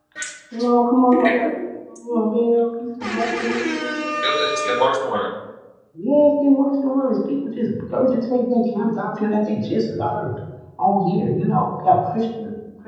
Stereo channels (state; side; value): identical; both; correlation 1.00